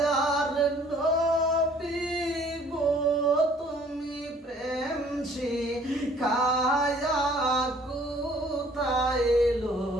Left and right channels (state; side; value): normal; both; correlation 0.57